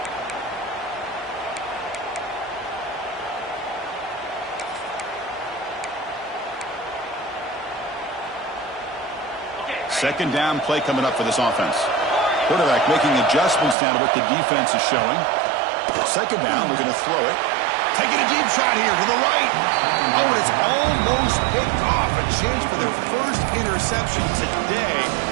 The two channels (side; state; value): left; drops out; at 13.8 s